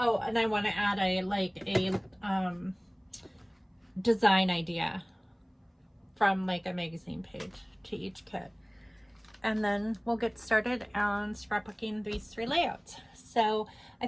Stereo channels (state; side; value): identical; both; correlation 1.00